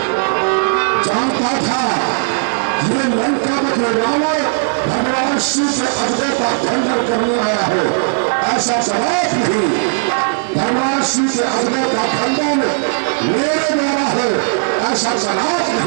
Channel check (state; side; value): silent; left; 69 dB below the other